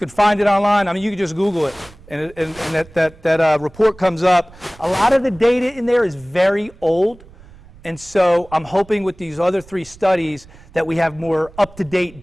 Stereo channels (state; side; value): noise; right; rumble, 23 dB below the sound